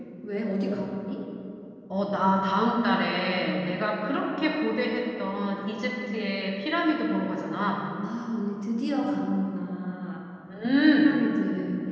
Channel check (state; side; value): identical; both; correlation 1.00